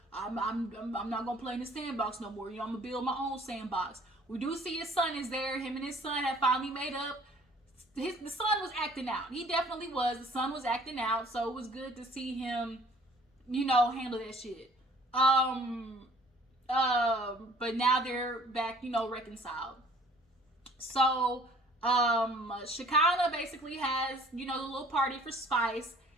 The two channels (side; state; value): both; normal; correlation 0.54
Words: I'm not gonna play in the sandbox no more. You know, I'm gonna build my own sandbox. We do see his son is there. Him and his son have finally made up. The son was acting out. He definitely was. The son was acting out, so it was good to see him, you know, handle that shit. But now they're back, you know, reconciled. So, Shekinah basically has, you know, the little party for Spice.